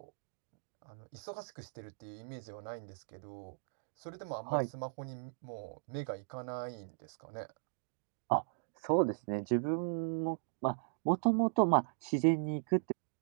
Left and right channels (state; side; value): silent; left; digital silence